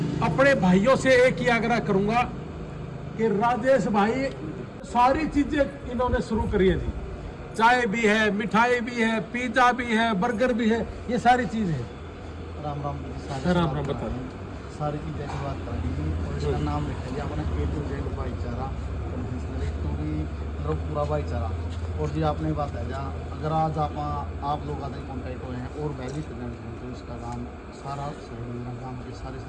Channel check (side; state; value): both; identical; correlation 1.00